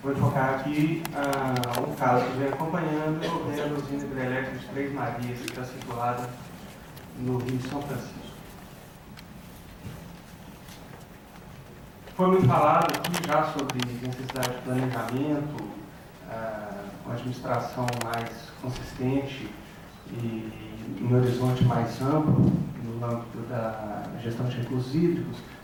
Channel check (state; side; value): identical; both; correlation 1.00